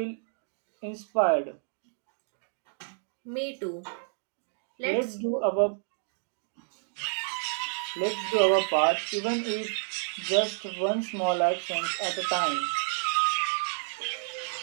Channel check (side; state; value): left; silent; digital silence